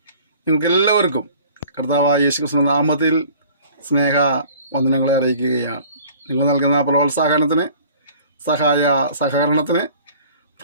നിങ്ങൾക്കെല്ലാവർക്കും കർത്താവായ യേശുക്രിസ്തുവിന്റെ നാമത്തിൽ സ്നേഹ വന്ദനങ്ങളെ അറിയിക്കുകയാണ്. നിങ്ങൾ നൽകുന്ന പ്രോത്സാഹനത്തിന്, സഹകരണത്തിന്,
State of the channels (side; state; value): both; inverted; correlation -0.49